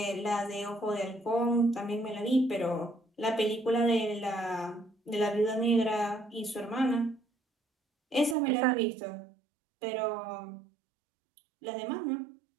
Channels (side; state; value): left; drops out; at 8.3 s